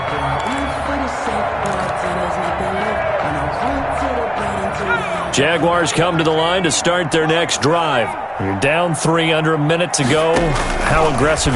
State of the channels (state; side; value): identical; both; correlation 1.00